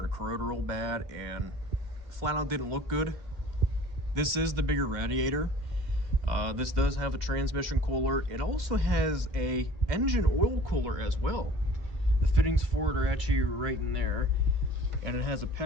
to corrode real bad and flat out didn't look good. This is the bigger radiator. This does have a transmission cooler. It also has a engine oil cooler as well. The fittings for it are actually right in there, and it has a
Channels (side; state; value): left; late; 2.2 ms